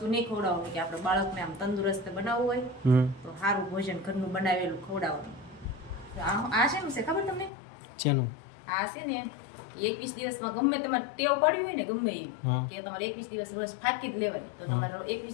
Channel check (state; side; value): drops out; right; at 7.5 s